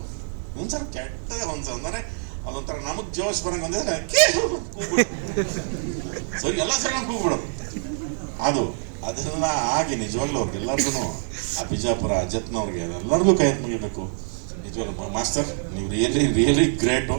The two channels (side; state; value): left; silent; 62 dB below the other